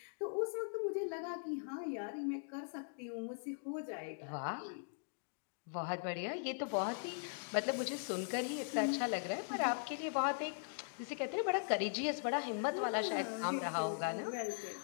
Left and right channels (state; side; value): silent; right; digital silence